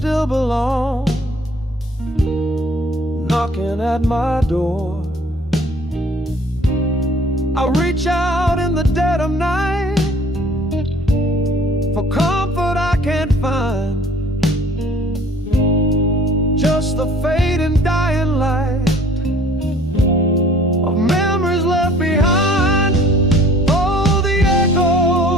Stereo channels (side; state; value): both; normal; correlation 0.53